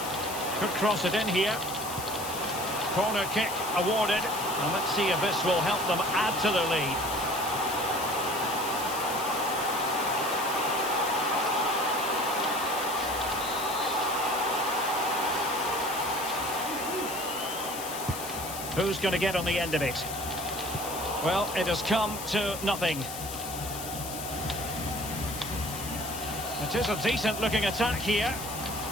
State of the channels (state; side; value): noise; left; hiss, 8 dB below the sound